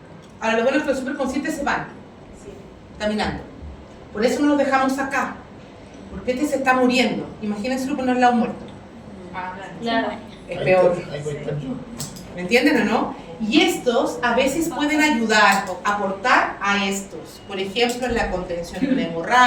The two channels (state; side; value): identical; both; correlation 1.00